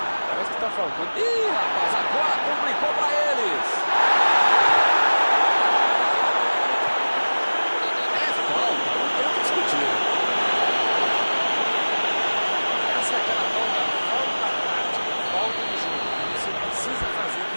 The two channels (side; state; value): both; inverted; correlation -1.00